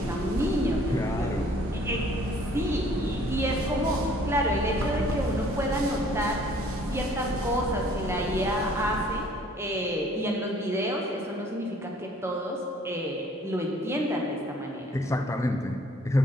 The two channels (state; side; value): normal; both; correlation 0.57